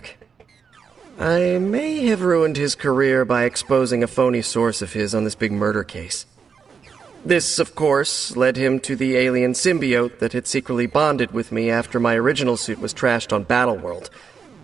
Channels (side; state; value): left; quieter; 6.0 dB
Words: I may have ruined his career by exposing a phony source of his on this big murder case. This, of course, led him to the alien symbiote that had secretly bonded with me after my original suit was trashed on Battleworld.